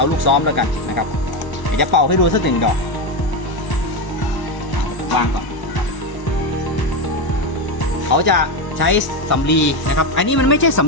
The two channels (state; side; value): late; right; 1.0 ms